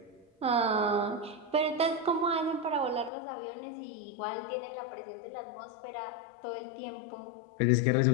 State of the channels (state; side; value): drops out; right; at 3.1 s